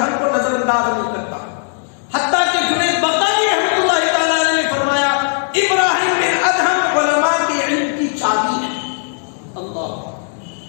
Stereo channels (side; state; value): right; silent; 59 dB below the other